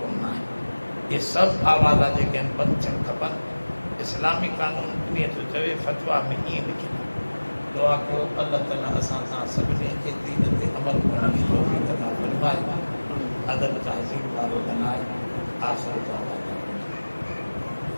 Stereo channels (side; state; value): both; inverted; correlation -1.00